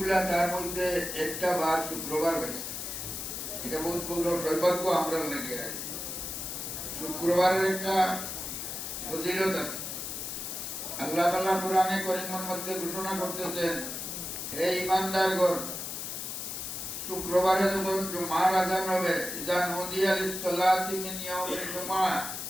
তার মধ্যে একটা বার শুক্রবার হয়েছে। এটা বহুত বড় সৌভাগ্য আমরা লেগে আছে। শুক্রবারের একটা ফজিলত আছে। আল্লাহ তাআলা কোরআনে কারীমের মধ্যে ঘোষণা করতেছেন, হে ঈমানদারগণ, শুক্রবারে যখন জুমার আযান হবে, ইযা নুদিয়া লিস-সালাতি মিন ইয়াউমিল জুমআহ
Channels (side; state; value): left; noise; hiss, 6 dB below the sound